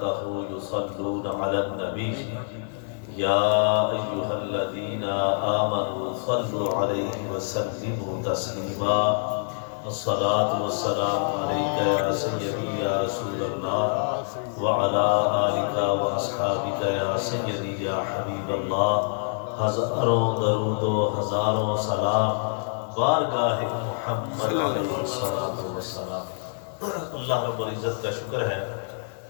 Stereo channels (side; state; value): right; silent; digital silence